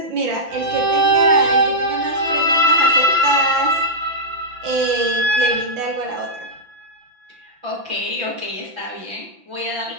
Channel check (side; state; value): left; late; 5.9 ms